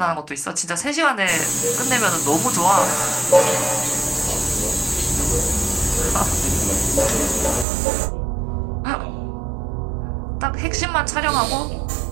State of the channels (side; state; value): left; drops out; at 7.7 s